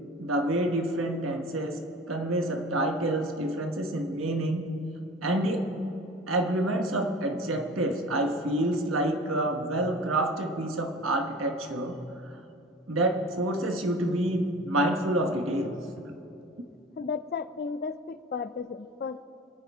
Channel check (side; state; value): both; normal; correlation 0.39